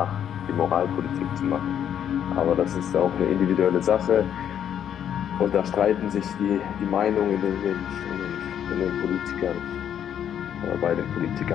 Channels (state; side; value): quieter; right; 9.4 dB